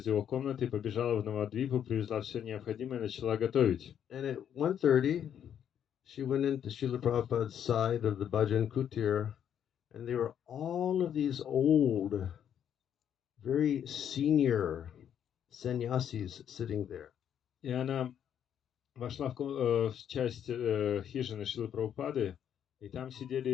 его комнаты, побежала в Навадвипу, привезла все необходимое и начала готовить. And at 1:30, she went into Srila Prabhupada's side of the Bhajan Kutir, and there were all of these old, very senior sannyasis sitting there. И она вошла в часть хижины Шрилы Прабхупады, и там сидели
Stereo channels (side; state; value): right; quieter; 9.2 dB